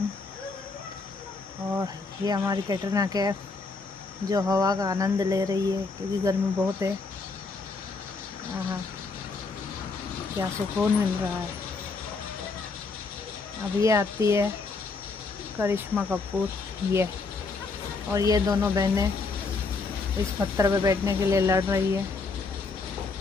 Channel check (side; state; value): right; quieter; 4.1 dB